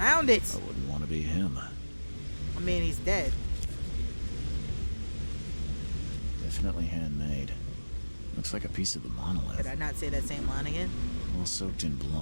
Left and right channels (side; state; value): both; inverted; correlation -1.00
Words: found it. I wouldn't want to be him. I mean, he's dead. Definitely handmade. Looks like a piece of the monolith. Did I not say that same line again? All soaked in